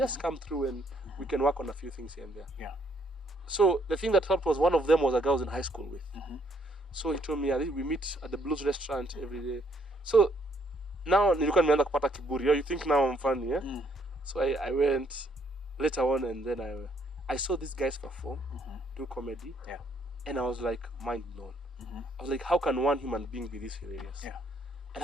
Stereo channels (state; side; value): normal; both; correlation 0.69